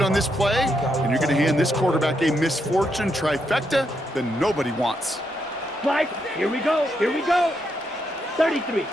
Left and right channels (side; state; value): both; normal; correlation 0.80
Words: this play, and you're going to hand this quarterback a misfortune trifecta that nobody wants. Spike. Here we go. Here we go. 33.